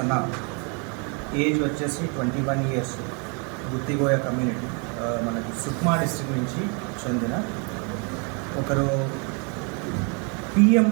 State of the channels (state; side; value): quieter; left; 34.9 dB